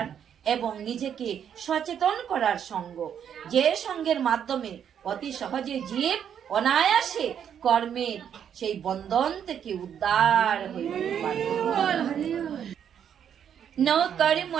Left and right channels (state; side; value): quieter; left; 8.7 dB